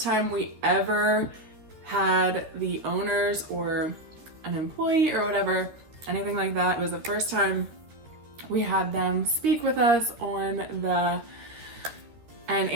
time we ever had the owners or an employee or whatever, anything like that. It was the first time we had them speak with us and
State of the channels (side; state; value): left; late; 13 ms